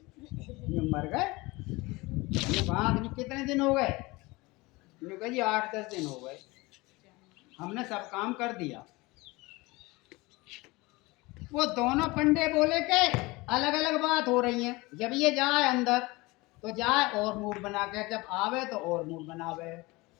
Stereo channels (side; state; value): right; quieter; 22.9 dB